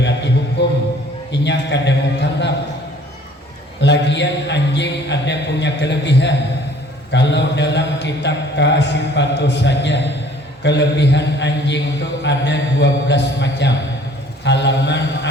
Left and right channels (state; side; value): normal; both; correlation 0.54